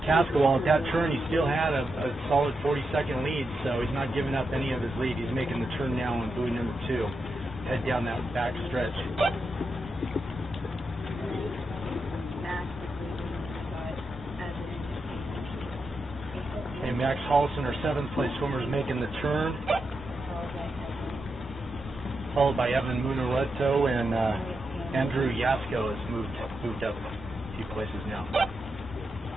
Cascawal, at that turn, he still had a solid 40-second lead, so he's not giving up any of his lead. He's making the turn now on buoy number 2. Head down that back stretch. And Max Hollison, our 7th place swimmer, is making the turn, followed by Evan Munareto, and Andrew Yasko has moved up a few places now.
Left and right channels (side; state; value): both; normal; correlation 0.86